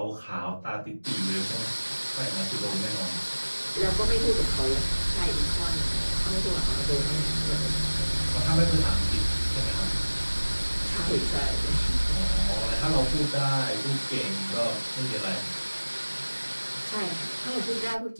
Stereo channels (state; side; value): inverted; both; correlation -1.00